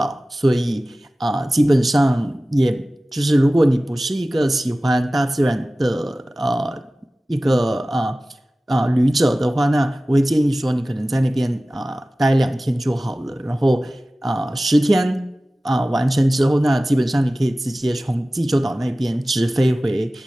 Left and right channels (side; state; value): both; normal; correlation 0.97